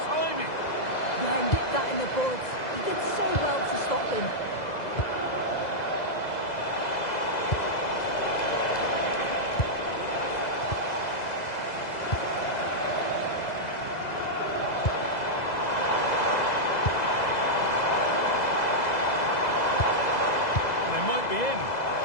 timing. Yeah, nipped that in the bud. He did so well to stop them. They might be in.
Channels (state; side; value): late; right; 2.0 ms